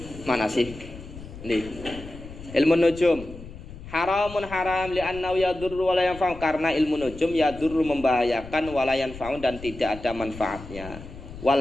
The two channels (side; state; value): left; noise; rumble, 14 dB below the sound